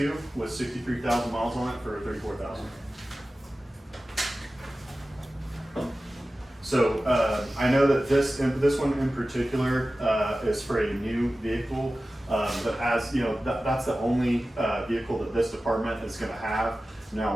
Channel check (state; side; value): normal; both; correlation 0.95